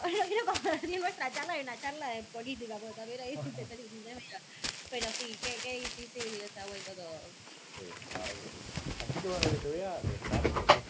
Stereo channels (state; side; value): identical; both; correlation 1.00